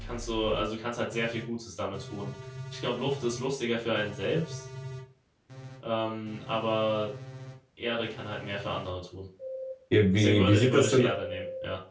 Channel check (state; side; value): identical; both; correlation 1.00